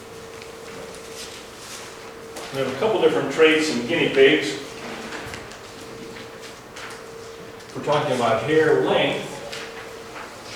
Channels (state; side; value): identical; both; correlation 1.00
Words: We have a couple different traits in guinea pigs. We're talking about hair length